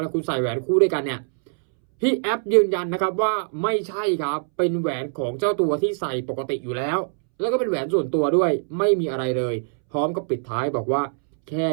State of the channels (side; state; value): left; silent; 63 dB below the other